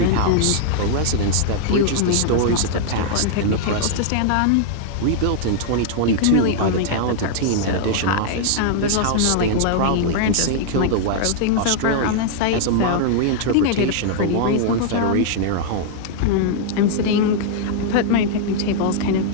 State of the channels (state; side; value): different; both; correlation -0.01